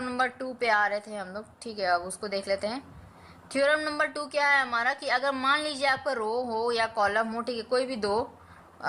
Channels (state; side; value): identical; both; correlation 1.00